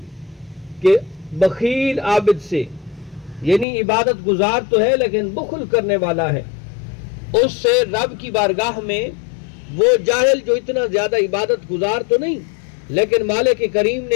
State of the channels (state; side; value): drops out; right; at 3.7 s